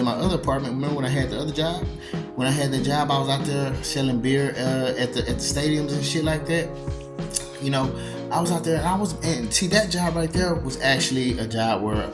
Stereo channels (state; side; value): identical; both; correlation 1.00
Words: my other apartment, remember when I had the other job? When I had the job, I was out there selling beer at the stadiums and shit like that. I was out there and see, that job right there was actually a job where